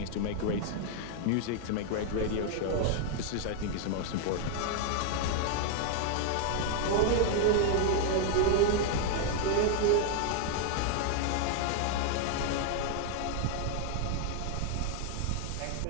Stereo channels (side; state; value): both; different; correlation 0.00